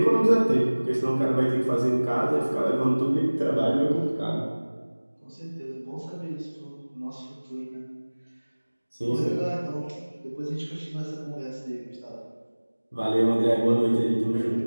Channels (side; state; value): both; inverted; correlation -1.00